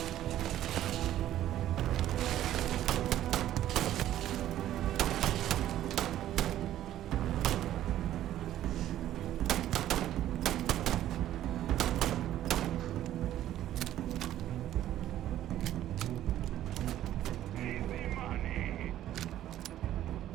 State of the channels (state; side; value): quieter; left; 12.6 dB